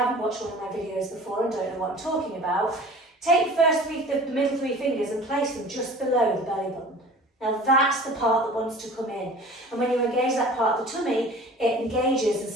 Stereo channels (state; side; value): normal; both; correlation 0.43